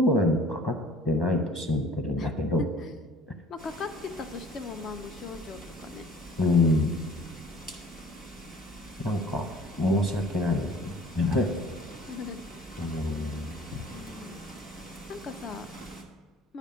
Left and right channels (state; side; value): normal; both; correlation 0.50